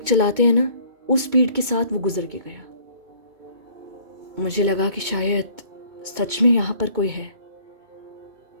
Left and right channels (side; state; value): left; late; 2.2 ms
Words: चलाते हैं ना, उस स्पीड के साथ वो गुजर के गया। मुझे लगा कि शायद सच में यहाँ पर कोई है।